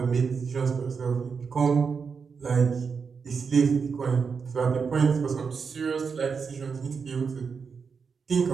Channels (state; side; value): quieter; left; 5.7 dB